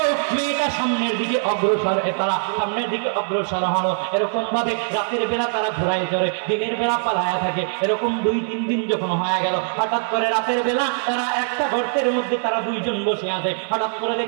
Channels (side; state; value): left; silent; 64 dB below the other